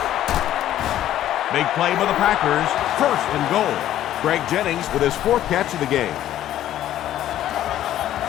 Big play by the Packers. 1st and goal. Greg Jennings with his 4th catch of the game.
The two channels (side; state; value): right; quieter; 12.4 dB